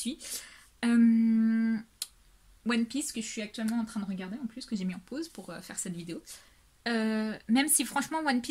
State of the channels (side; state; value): both; identical; correlation 1.00